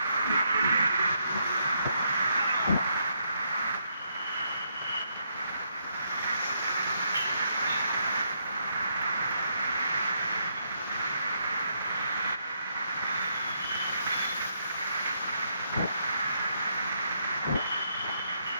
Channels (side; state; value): both; inverted; correlation -0.76